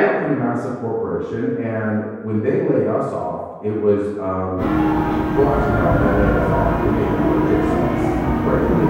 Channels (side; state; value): both; identical; correlation 1.00